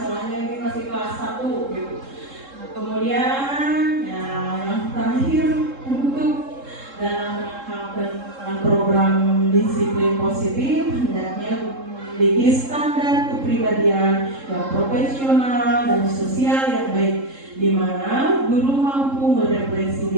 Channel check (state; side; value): late; left; 3.7 ms